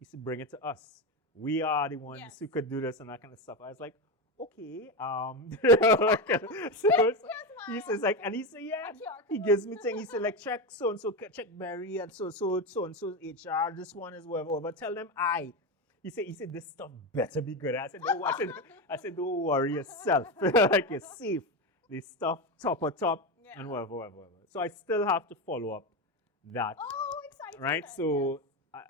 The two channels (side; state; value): both; normal; correlation 0.15